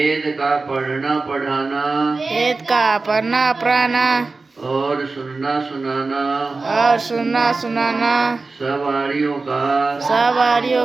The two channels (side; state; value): left; quieter; 3.8 dB